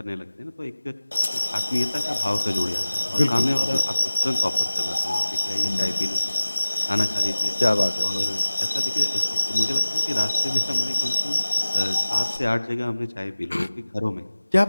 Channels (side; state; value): both; inverted; correlation -1.00